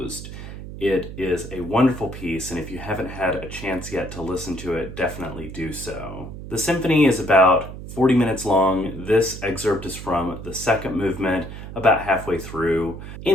It is a wonderful piece, and if you haven't had a chance yet to listen to it, definitely do so. The symphony is about 40 minutes long. This excerpt is from the second movement, about halfway through.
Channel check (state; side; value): noise; right; hum, 11 dB below the sound